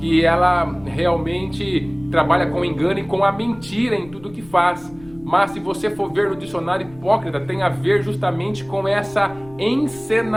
ela realmente trabalha com engano e com a mentira em tudo que faz. mas se você for ver no dicionário, hipócrita tem a ver justamente com essa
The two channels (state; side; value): noise; left; rumble, 22 dB below the sound